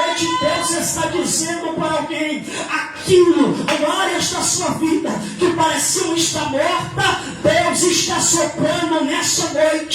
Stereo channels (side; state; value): both; identical; correlation 1.00